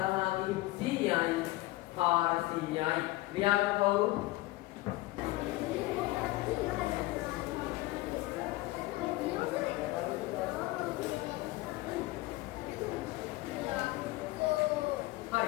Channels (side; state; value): right; quieter; 19.1 dB